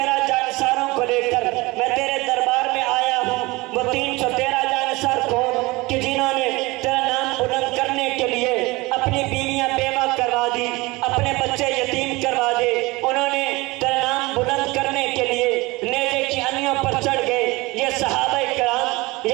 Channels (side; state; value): left; quieter; 22.6 dB